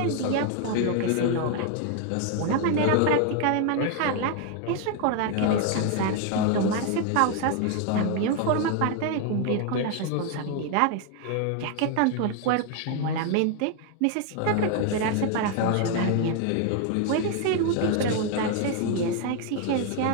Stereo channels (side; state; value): both; different; correlation 0.01